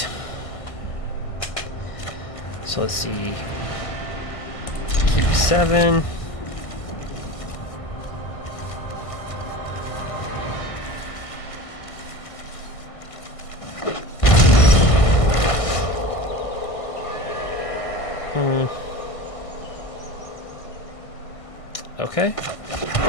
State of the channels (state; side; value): late; right; 1.5 ms